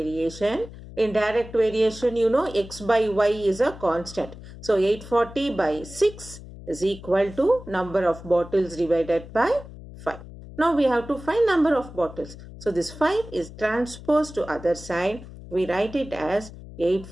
In direct variation, x by y is a constant. So 840 by 6 is equal to number of bottles divided by 5. Now we have to find number of bottles. So this 5 is transposed to other side. We write it as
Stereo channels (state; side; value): noise; left; hum, 15 dB below the sound